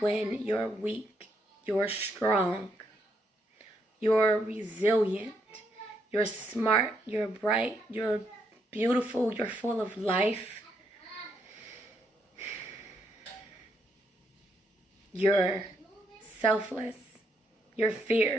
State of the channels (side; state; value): both; normal; correlation 0.76